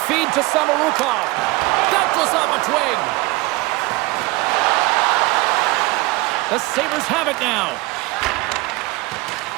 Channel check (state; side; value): quieter; left; 22.5 dB